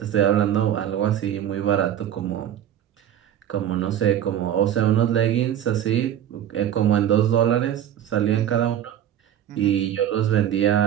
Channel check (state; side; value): quieter; left; 10.7 dB